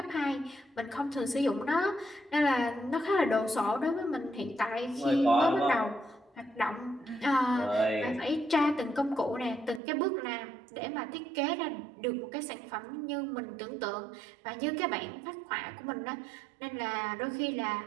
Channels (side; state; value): left; drops out; at 9.8 s